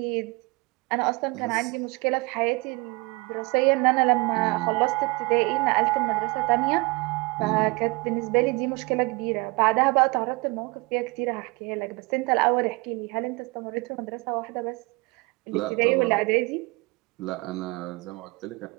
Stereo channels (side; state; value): left; quieter; 25.7 dB